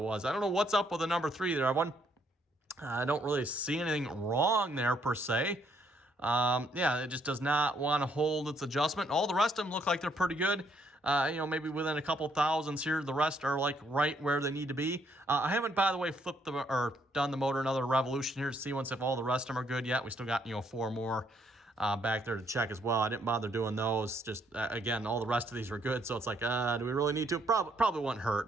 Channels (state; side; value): normal; both; correlation 0.70